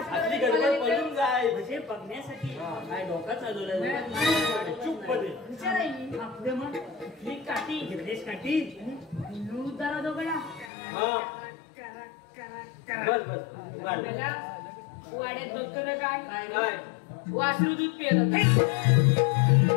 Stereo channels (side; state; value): right; drops out; at 10.7 s